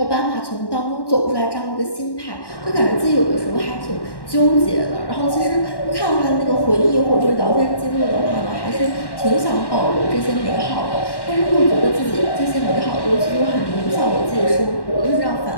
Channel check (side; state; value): right; late; 1.1 ms